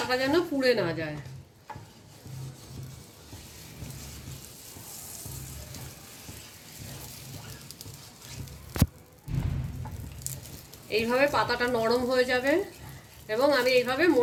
যেন পুড়ে না যায়। এইভাবে পাতাটা নরম হয়ে যাবে এবং আমি এইভাবে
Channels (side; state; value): both; identical; correlation 1.00